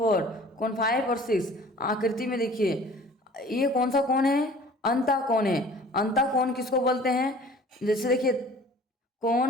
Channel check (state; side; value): normal; both; correlation 0.48